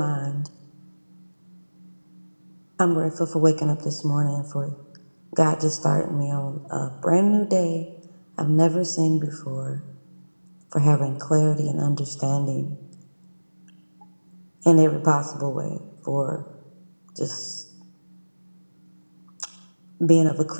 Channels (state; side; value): inverted; both; correlation -1.00